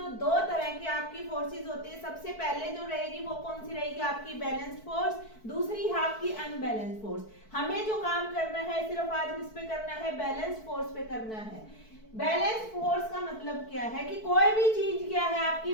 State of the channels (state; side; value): late; right; 4.6 ms